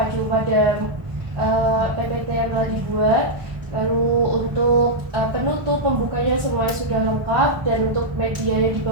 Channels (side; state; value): left; late; 1.1 ms